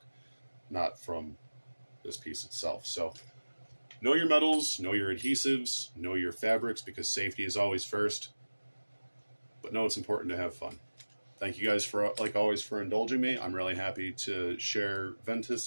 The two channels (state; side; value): inverted; both; correlation -1.00